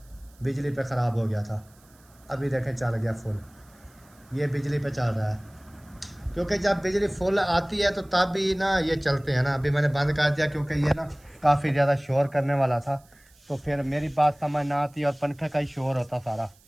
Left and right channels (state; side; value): noise; right; hiss, 30 dB below the sound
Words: बिजली पे ख़राब हो गया था। अभी देखें चल गया फुल, ये बिजली पे चल रहा है, क्योंकि जब बिजली फुल आती है तो तब भी ना ये चलते हैं ना। अभी मैंने बंद कर दिया क्योंकि ये ना काफ़ी ज़्यादा शोर करने वाला था, तो फिर मेरी बात समझ ना आती और पंखे का ही शोर होता सारा।